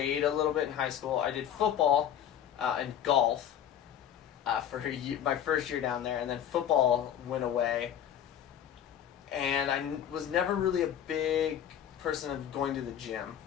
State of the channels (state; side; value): quieter; right; 9.8 dB